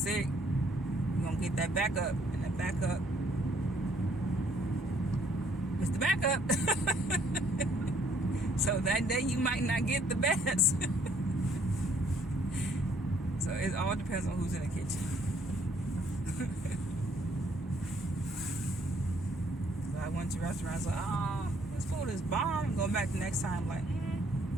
you're gonna get that backup, and that backup is the backup. So that day you might not get the best. So it all depends on who's in the kitchen. So I went to restaurants like, oh, this food is bomb. I'm going back the next time like,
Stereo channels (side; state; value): both; normal; correlation 0.65